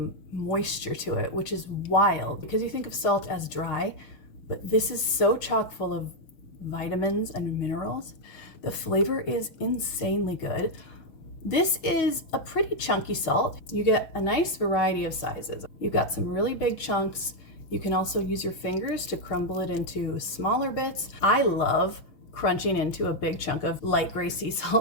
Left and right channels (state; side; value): late; right; 6.2 ms